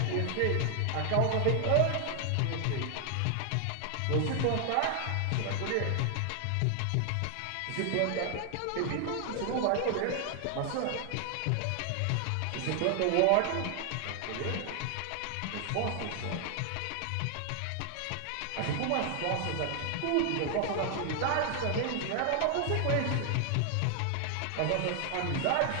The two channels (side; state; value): both; different; correlation 0.00